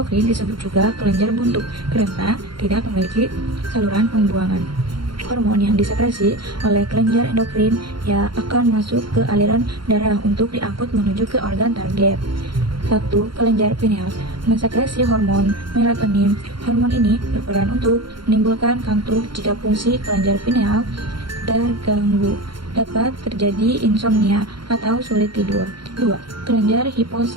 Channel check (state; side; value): late; left; 0.73 ms